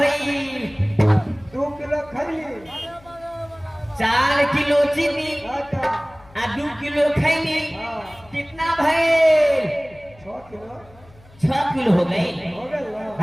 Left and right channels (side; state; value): left; noise; hum, 25 dB below the sound